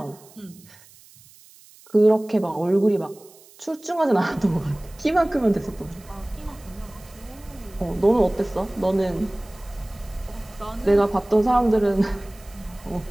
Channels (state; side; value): noise; right; hiss, 24 dB below the sound